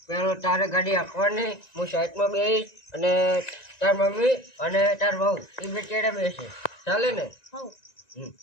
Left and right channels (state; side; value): late; right; 1.9 ms